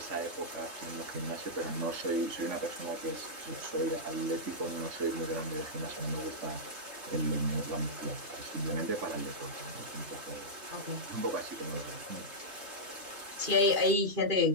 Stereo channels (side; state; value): left; late; 3.2 ms